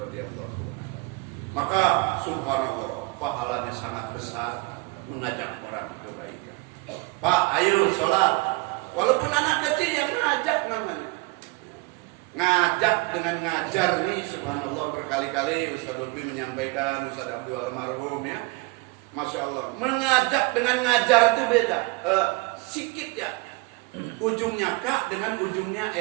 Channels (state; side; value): quieter; left; 25.1 dB